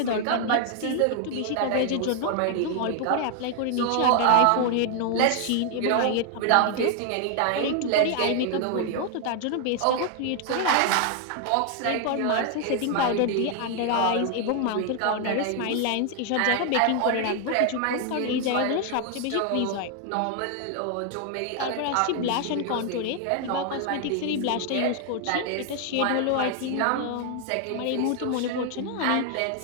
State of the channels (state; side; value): different; both; correlation 0.00